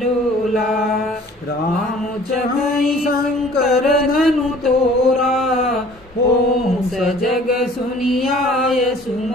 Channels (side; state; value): both; normal; correlation 0.51